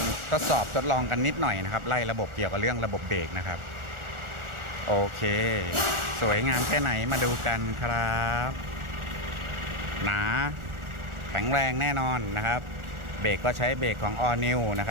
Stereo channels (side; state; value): left; late; 1.4 ms